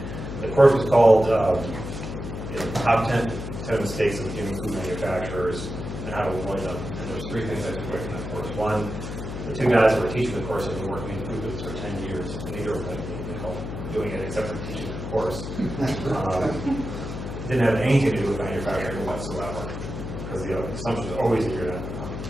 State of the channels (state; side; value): noise; left; hum, 7 dB below the sound